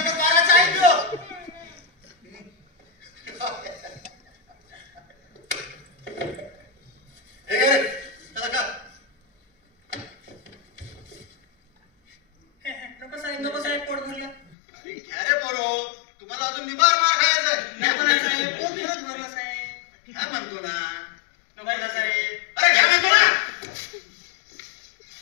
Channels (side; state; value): right; drops out; at 14.6 s